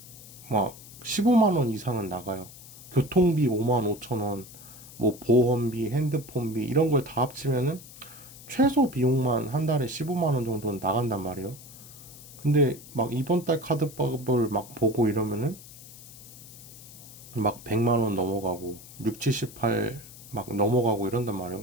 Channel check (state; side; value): noise; left; hiss, 18 dB below the sound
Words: 막 15만 원 이상은 나가요. 교통비 5만 5천 원, 뭐 보험비, 핸드폰비 이런 걸 다 합치면은 최소 비용만 한 달에 15만 원 정도는 나간단 말이에요. 근데 막 이번 달 카드값을 막 보고 이러면은 막 100만 원 넘어가고 6, 78 막 넘어가고 이런단 말이에요.